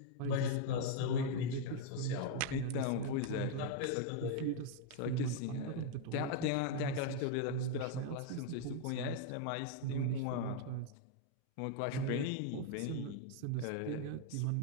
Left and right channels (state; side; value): different; both; correlation 0.00